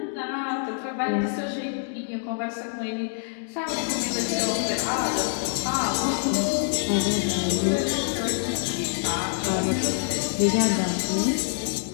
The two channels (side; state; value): right; silent; digital silence